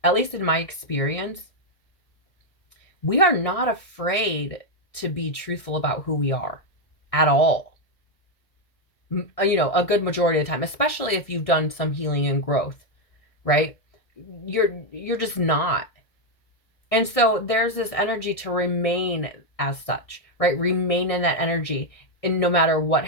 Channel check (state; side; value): late; right; 1.6 ms